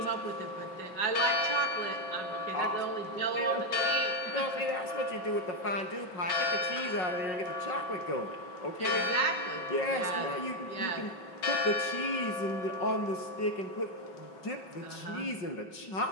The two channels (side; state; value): right; late; 5.4 ms